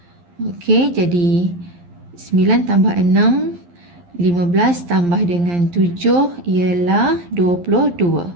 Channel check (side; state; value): left; late; 11 ms